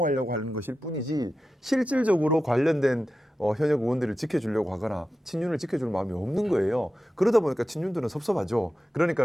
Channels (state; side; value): normal; both; correlation 0.92